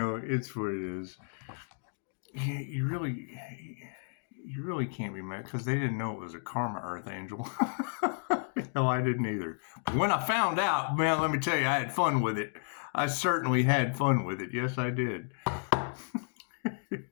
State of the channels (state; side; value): silent; right; digital silence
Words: it's what it is. You really can't be mad because they didn't know it was a karma Earth Angel. No, I didn't either. But when I found out, man, let me tell you, I had fun with it. I certainly had fun with it. Yes, I did. You